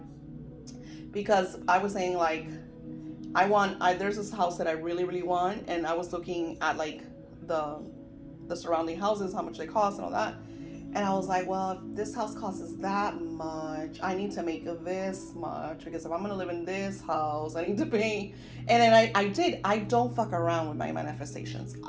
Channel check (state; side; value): identical; both; correlation 1.00